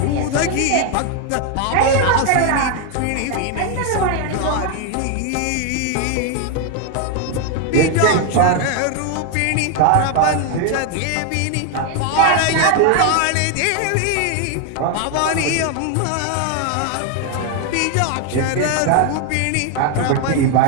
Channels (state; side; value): different; both; correlation 0.01